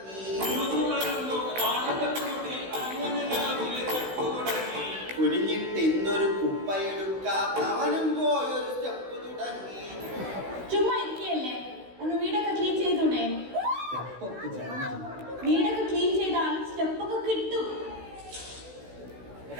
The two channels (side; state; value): left; late; 16 ms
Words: കുനിഞ്ഞിട്ട് ഇന്നൊരു കുപ്പയെടുക്കാത്തവനും പോയൊരു സ്റ്റെപ്പ് തുടങ്ങി. ചുമ്മാ ഇരിക്കല്ലേ, ഒന്ന് വീടൊക്കെ ക്ലീൻ ചെയ്തൂടെ? വീടൊക്കെ ക്ലീൻ ചെയ്താലും സ്റ്റെപ്പൊക്കെ കിട്ടും.